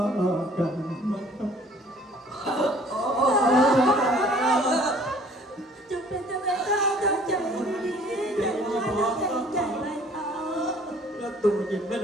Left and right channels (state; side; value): normal; both; correlation 0.54